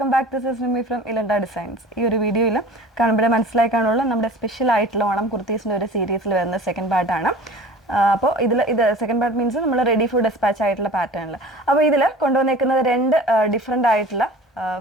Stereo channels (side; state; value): both; normal; correlation 0.41